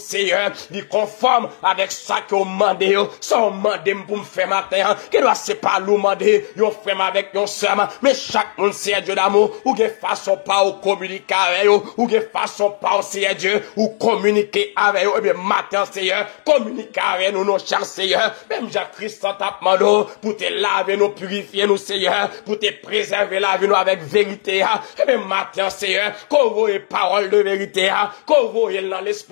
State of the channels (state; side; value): silent; right; 65 dB below the other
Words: lui conforme avec ça que on demande sans demander pour me faire matin que doit c'est pas nous demander, yon frère avec yon sœur, mais chaque monde c'est Dieu d'amour, ou gen façon pas ou communiquer avec eux, ou gen façon pas c'est Dieu, ou communiquer avec eux, et bien matin Seigneur, communiquer avec nous, nos chers Seigneur, même Jacques-Christ t'a demandé, pour te laver nous, purifier nous Seigneur, pour te préserver la vie nous avec vérité, et bien matin Seigneur, qu'on voit parole de vérité, qu'on voit dans